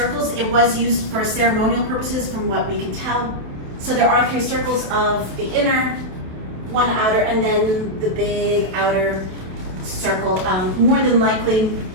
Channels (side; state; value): left; late; 28 ms